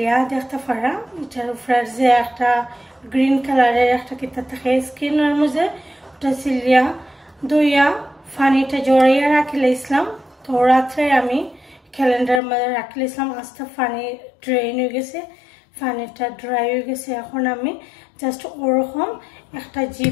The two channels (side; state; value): right; drops out; at 12.4 s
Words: দেখতে পারা। এটার উপরে যে একটা গ্রিন কালারের একটা কিতা থাকে স্কিনের মধ্যে, ওটা সিলিয়া ধুইয়া পানিটা জড়াইয়া রাখিলে ইসলাম। তো রাত্রে আমি ক্যালেন্ডার মধ্যে রাখিলে ইসলাম। আস্তে পানি ড্রেন হয়ে গেছে, পানিটা ড্রাই হয়ে গেছে। এখন আমি জাস্ট ওরকম একটা